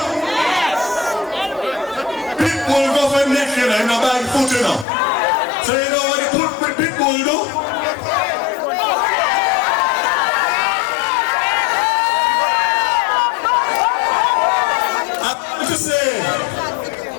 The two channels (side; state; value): right; drops out; at 4.9 s